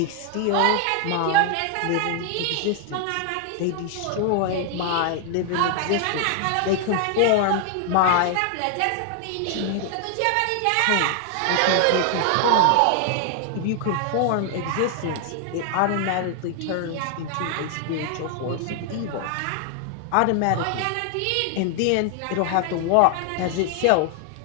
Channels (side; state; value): both; different; correlation 0.00